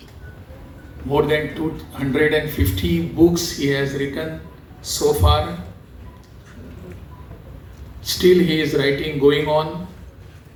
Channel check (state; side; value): identical; both; correlation 1.00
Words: more than 250 books he has written so far. Still he is writing, going on.